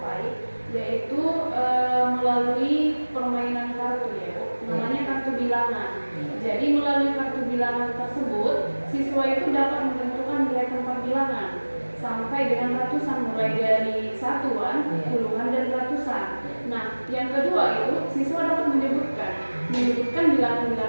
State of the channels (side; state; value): both; inverted; correlation -1.00